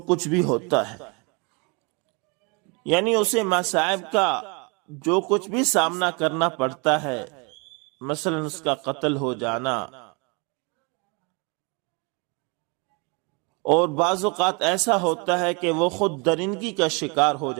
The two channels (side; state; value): left; quieter; 31.5 dB